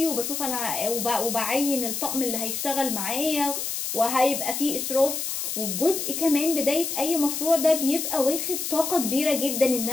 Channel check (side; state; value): left; noise; hiss, 3 dB below the sound